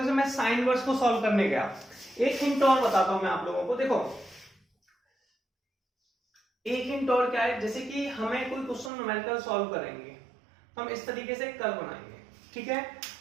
से, मैं साइन इनवर्स को सॉल्व करने गया, एक हिंट और बताता हूं मैं आप लोगों को। देखो एक हिंट और क्या है, जैसे कि हमें कोई क्वेश्चन न्यूमेरिकल सॉल्व करेंगे, हम इस तरीके से कर्व बनाएंगे, ठीक है।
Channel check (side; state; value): left; drops out; at 8.9 s